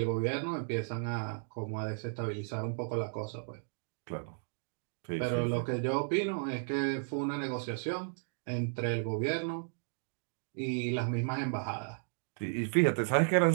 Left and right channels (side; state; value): left; silent; digital silence